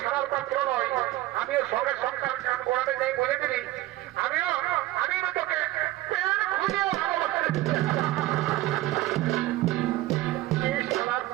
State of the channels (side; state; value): left; quieter; 16.7 dB